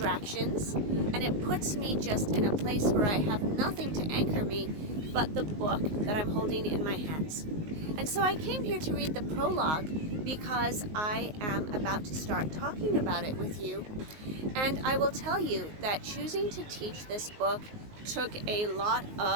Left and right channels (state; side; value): late; left; 19 ms